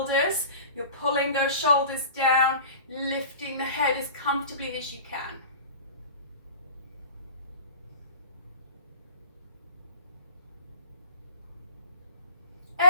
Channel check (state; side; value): inverted; both; correlation -0.41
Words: You're pulling those shoulders down, lifting the head as comfortably as you can.